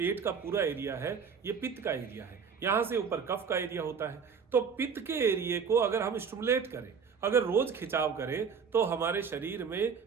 का पूरा एरिया है ये पित्त का एरिया है। यहां से ऊपर कफ का एरिया होता है। तो पित्त के एरिया को अगर हम स्टिमुलेट करें, अगर रोज खिंचाव करें तो हमारे शरीर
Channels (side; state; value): left; quieter; 6.2 dB